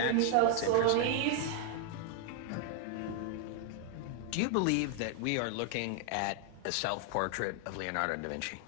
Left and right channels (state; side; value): different; both; correlation 0.00